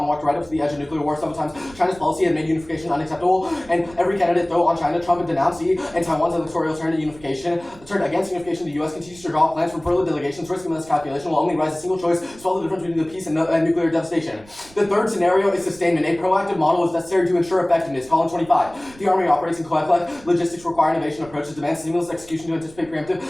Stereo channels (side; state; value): right; noise; rumble, 22 dB below the sound